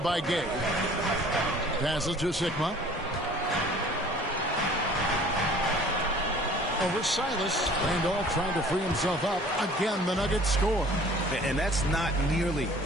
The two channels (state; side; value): normal; both; correlation 0.50